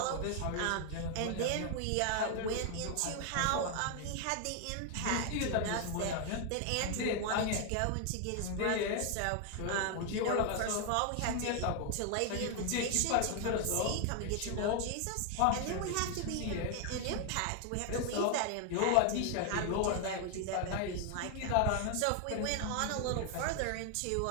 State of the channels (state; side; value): different; both; correlation 0.00